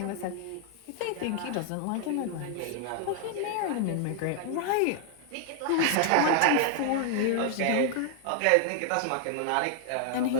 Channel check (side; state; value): both; different; correlation 0.00